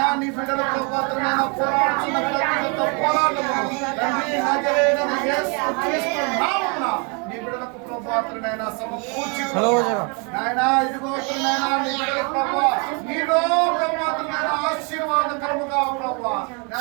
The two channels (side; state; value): left; quieter; 34.1 dB